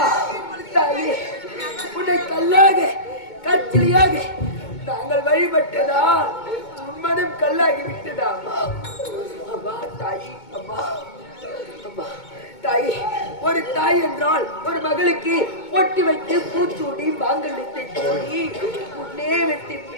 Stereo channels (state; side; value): late; right; 2.2 ms